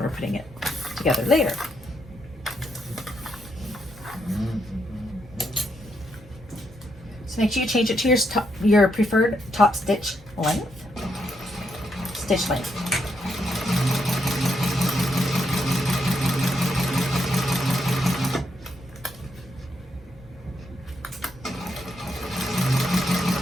putting it together later. Make sure you change it to your preferred top stitch length. Stitch length.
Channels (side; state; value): both; normal; correlation 0.79